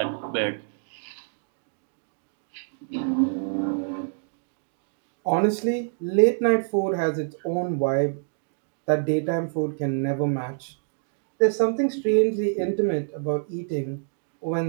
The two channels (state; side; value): silent; left; 61 dB below the other